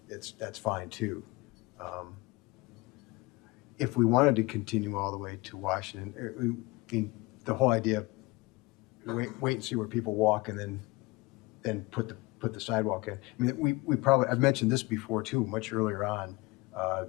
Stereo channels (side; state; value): right; quieter; 23.2 dB